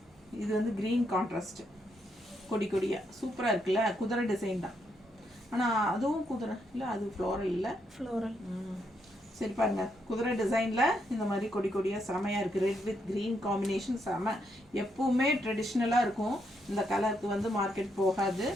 இது வந்து க்ரீன் கான்ட்ராஸ்ட், கொடியாக சூப்பராக இருக்குல்ல. குதிரை டிசைன் தான், ஆனால் அதுவும் குதிரை இல்லை, அது ஃப்ளோரல் இல்லை, ஃப்ளோரல். சரி பாருங்க, குதிரை டிசைனில் இந்த மாதிரி கொடியாக செமையாக இருக்குது. ரெட் வித் க்ரீன் காம்பினேஷன் செம. எப்பவுமே ட்ரெடிஷ்னலாக இருக்கும், இந்த கலருக்கு வந்து மார்க்கெட் போகாது.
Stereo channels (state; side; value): normal; both; correlation 0.78